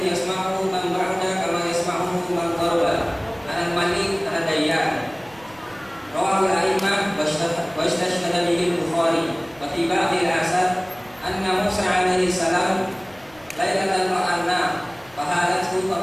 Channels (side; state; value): right; noise; rumble, 26 dB below the sound